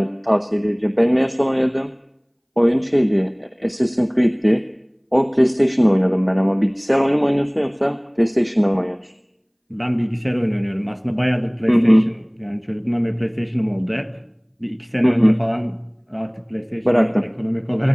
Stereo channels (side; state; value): both; identical; correlation 1.00